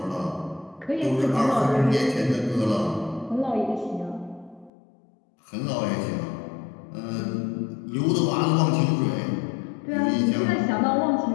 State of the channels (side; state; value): right; drops out; at 4.7 s